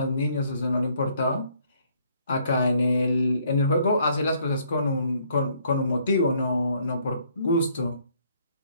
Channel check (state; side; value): inverted; both; correlation -0.66